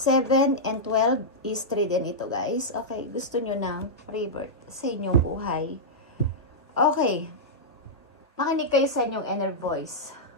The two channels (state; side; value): normal; both; correlation -0.09